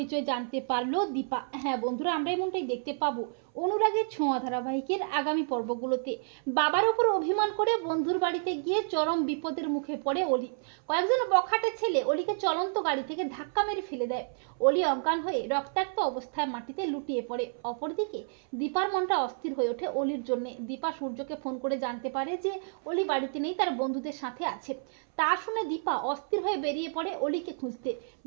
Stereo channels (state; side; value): silent; left; 58 dB below the other